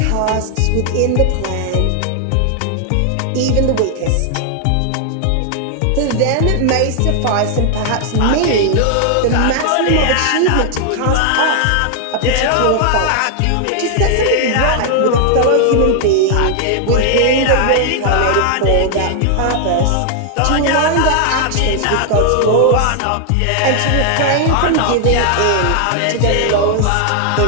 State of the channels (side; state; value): both; different; correlation 0.00